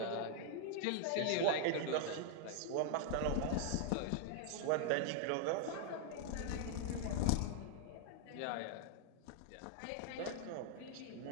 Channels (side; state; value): both; different; correlation 0.00